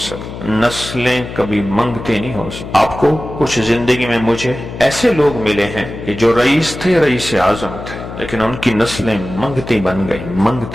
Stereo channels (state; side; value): noise; left; hum, 10 dB below the sound